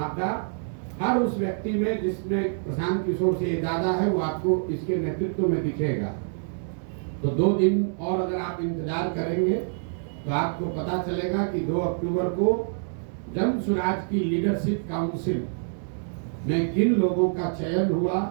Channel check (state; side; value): silent; left; digital silence